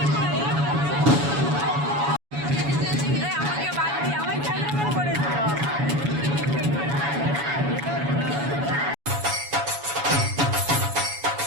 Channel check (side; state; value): left; late; 7.1 ms